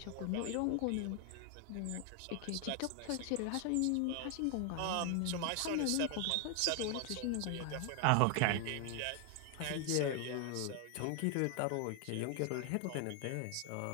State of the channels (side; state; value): both; different; correlation 0.00